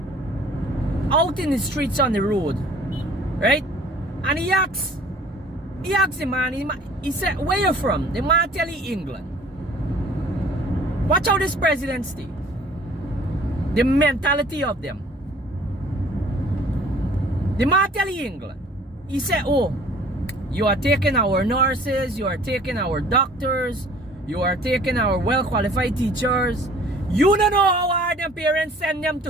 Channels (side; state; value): both; normal; correlation 0.52